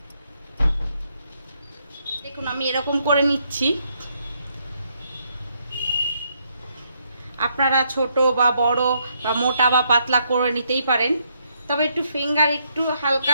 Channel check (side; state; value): both; inverted; correlation -0.74